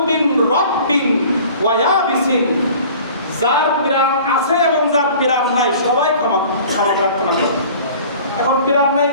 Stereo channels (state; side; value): inverted; both; correlation -0.46